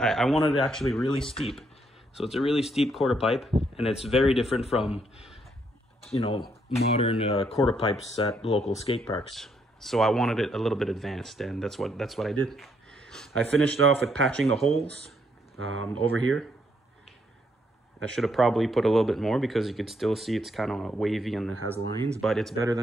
wanted it actually really steep. So it's a really steep quarter pipe, and it's very different from, modern quarter pipes at local skate parks. So I wanted it a little bit advanced, and that's what I did. I finished off with patching the holes over here. I should have probably put a little bit more because you could still see it's kind of wavy and it has lines, but it's better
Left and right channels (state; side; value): normal; both; correlation 0.73